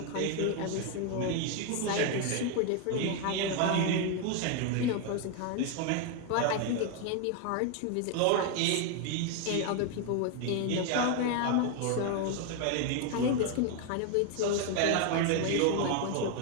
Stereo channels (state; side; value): different; both; correlation 0.01